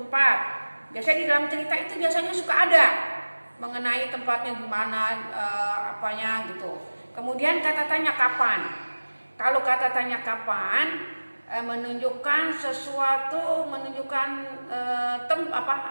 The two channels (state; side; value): inverted; both; correlation -1.00